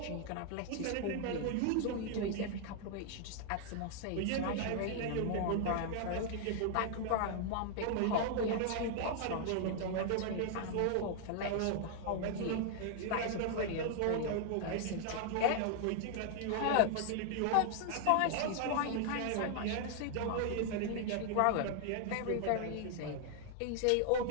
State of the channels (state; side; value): different; both; correlation -0.01